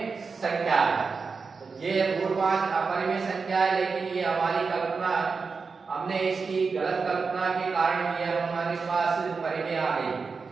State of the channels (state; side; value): quieter; left; 4.8 dB